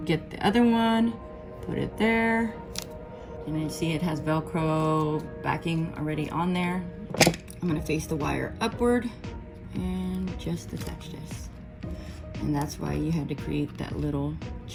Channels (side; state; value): both; identical; correlation 1.00